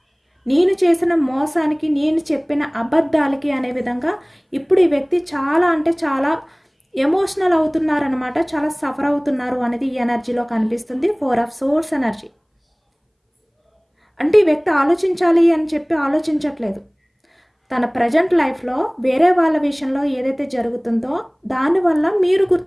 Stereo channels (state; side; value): identical; both; correlation 1.00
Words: నేను చేసిన మోసానికి, నేను చెప్పిన అబద్ధాలకి అనే విధంగా ఇప్పుడు ఈ వ్యక్తి చాలా అంటే చాలా ఎమోషనల్ అవుతున్నారనమాట, చాలా సఫర్ అవుతున్నారు అనేది ఈ ఎనర్జీలో కనిపిస్తుంది. 4 ఆఫ్ సోర్స్ ఎనర్జీ. అంటే ఈ వ్యక్తి ఆలోచించాలి అని చెప్పి ఆలోచించట్లేదు. తన ప్రజెంట్ లైఫ్లో వేరే వాళ్ళ విషయంలో ఏదైతే జరుగుతుందో దానివల్ల మీరు